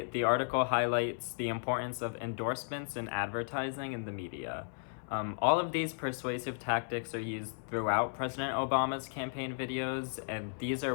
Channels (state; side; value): silent; right; 55 dB below the other